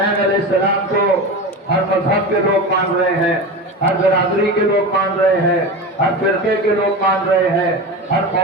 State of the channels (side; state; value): both; normal; correlation 0.26